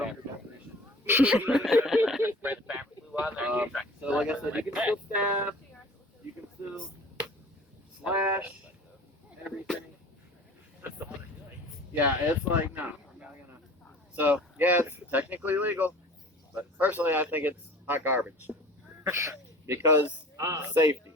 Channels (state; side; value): normal; both; correlation 0.44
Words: of your definition. Spread the fabric glue on there. and you try. So like I said, you can still stab, you can still slash, everything. Yeah, it's like, no, I'm not gonna. So, yeah, it's technically legal, but personally I think it's hot garbage. Because safety.